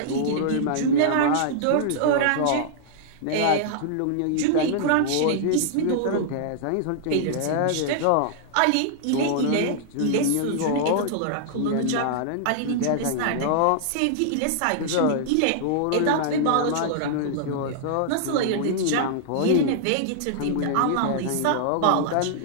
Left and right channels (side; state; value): both; different; correlation -0.01